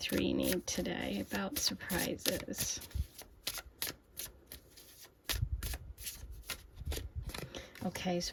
need today about surprises? Okay,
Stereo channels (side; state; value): both; identical; correlation 1.00